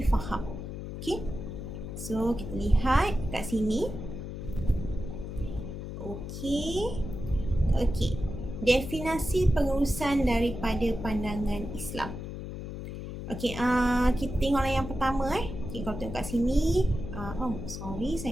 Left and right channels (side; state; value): left; noise; hum, 8 dB below the sound